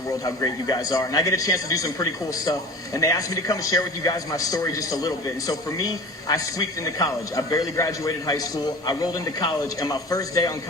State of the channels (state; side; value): normal; both; correlation 0.39